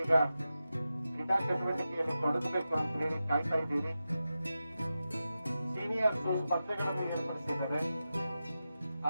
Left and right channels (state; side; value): inverted; both; correlation -0.92